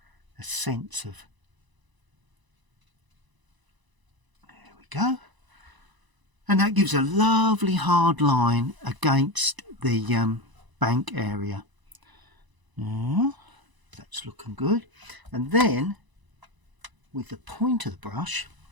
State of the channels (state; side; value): late; left; 1.0 ms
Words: a sense of, there we go. And that gives a lovely hard line against the bank area. Yeah, that's looking good. And then with the point of the brush,